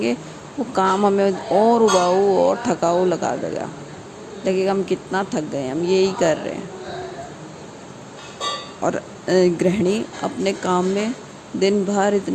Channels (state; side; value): identical; both; correlation 1.00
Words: वो काम हमें और उबाऊ और थकाऊ लगेगा, हम कितना थक गए, हम यही कर रहे हैं। और गृहिणी अपने काम में दिन भर